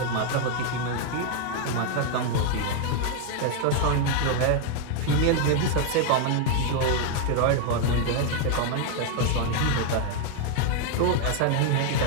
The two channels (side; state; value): both; different; correlation 0.00